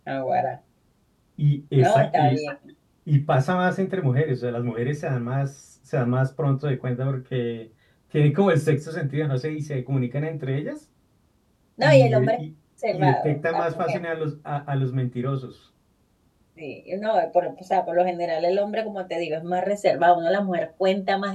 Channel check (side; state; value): both; identical; correlation 1.00